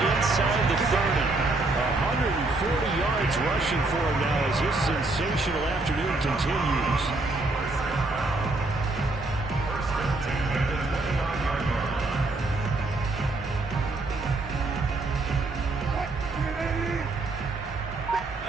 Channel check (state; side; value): quieter; left; 3.0 dB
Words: inside the 30. 140 yards rushing for him now as this sensational afternoon continues.